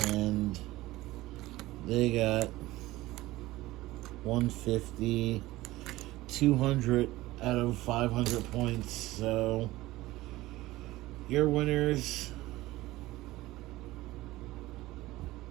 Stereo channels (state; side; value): quieter; left; 17.8 dB